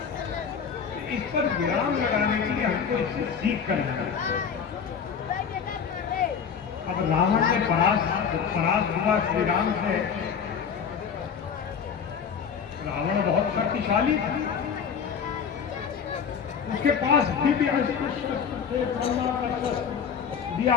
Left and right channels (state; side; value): quieter; right; 6.9 dB